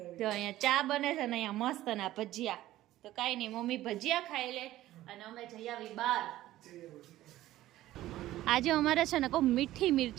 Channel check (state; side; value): quieter; left; 15.0 dB